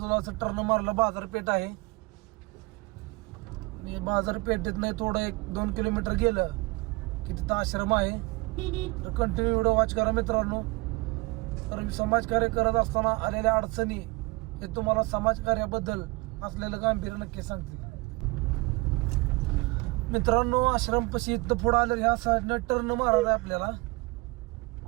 असं टर्न मारलं बाजारपेठ आहे आणि बाजारपेठेत नाही थोडं 1-2 किलोमीटर गेलं की तिथं आश्रम आहे. तर कंटिन्यू व्हिडिओ वॉच करा मित्रांनो. तर समाजकार्य करत असताना आलेल्या अडचणी हे तुम्हाला समाजकार्याबद्दल असलेलं गांभीर्य नक्की सांगतील. मित्रांनो आश्रमपाशी इथं पुढं आलं ह्या साईडनं टर्न मारायला आपल्याला.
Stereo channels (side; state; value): left; quieter; 24.3 dB